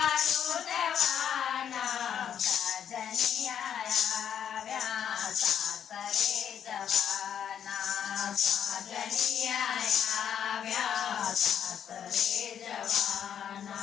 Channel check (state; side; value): quieter; right; 8.9 dB